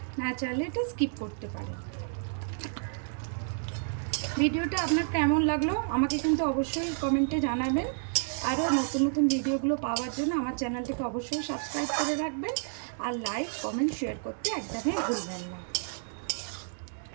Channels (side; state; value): left; silent; digital silence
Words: না চাইলে এটা স্কিপ করতে পারেন। ভিডিওটা আপনার কেমন লাগলো আমাকে কিন্তু অবশ্যই কমেন্টে জানাবেন। আরও নতুন নতুন ভিডিওগুলো পাওয়ার জন্য আমার চ্যানেলটিকে অবশ্যই সাবস্ক্রাইব করে রাখবেন। আর লাইক, কমেন্ট, শেয়ার করতে একদমই ভুলবেন না।